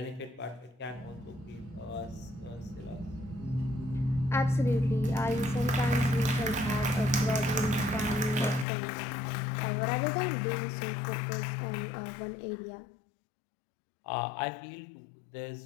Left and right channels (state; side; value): drops out; right; at 8.7 s